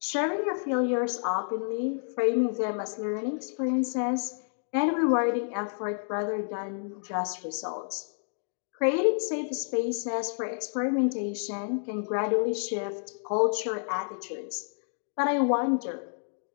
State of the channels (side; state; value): right; silent; digital silence